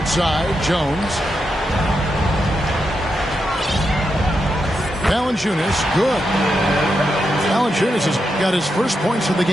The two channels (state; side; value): normal; both; correlation 0.85